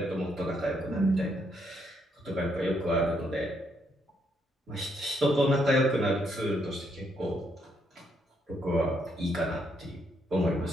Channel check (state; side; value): normal; both; correlation 0.75